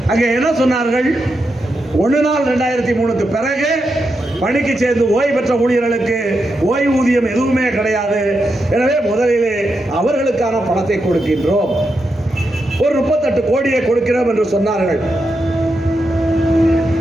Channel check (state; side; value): normal; both; correlation 0.85